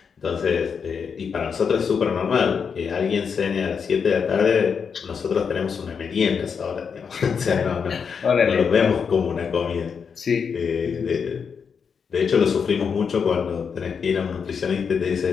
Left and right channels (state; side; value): quieter; right; 6.3 dB